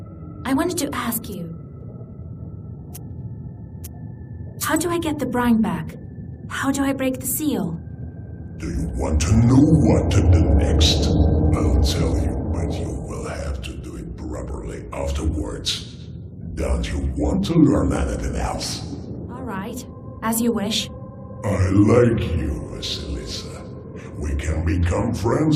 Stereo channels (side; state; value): both; identical; correlation 1.00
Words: I wanted to ask you... How do I get the brine back? How do I break the seal? Do you want to know what to do next? I'll tell you, but you will have to do it properly afterwards. Don't you want to learn anything else? All right, as you wish. I like you, Vasilisa. We can become